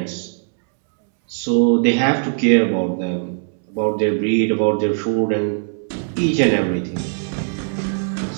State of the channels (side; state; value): left; silent; 66 dB below the other